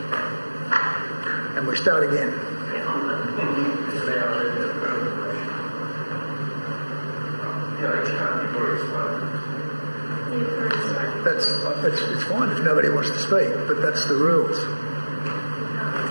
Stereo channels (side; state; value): both; inverted; correlation -1.00